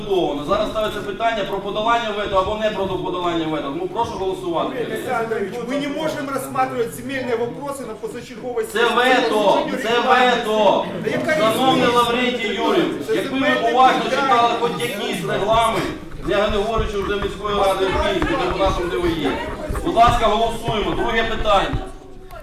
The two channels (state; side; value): identical; both; correlation 1.00